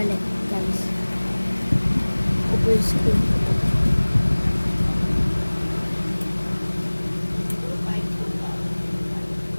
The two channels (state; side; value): inverted; both; correlation -1.00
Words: guys. Full screen.